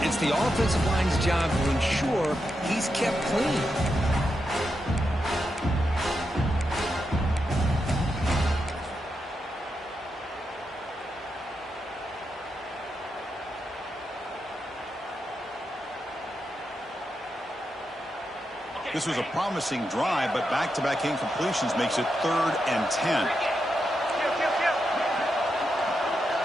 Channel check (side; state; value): both; normal; correlation 0.85